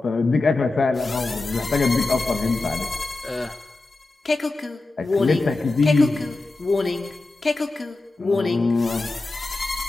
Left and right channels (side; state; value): right; quieter; 3.2 dB